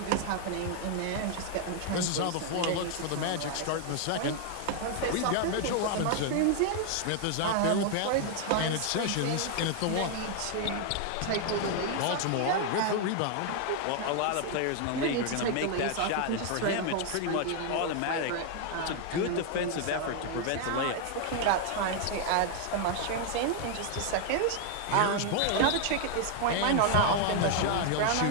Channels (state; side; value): different; both; correlation 0.00